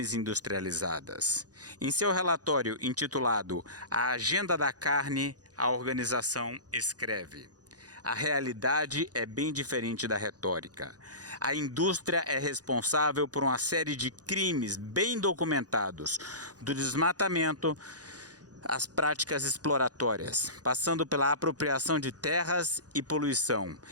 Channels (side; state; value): left; late; 0.68 ms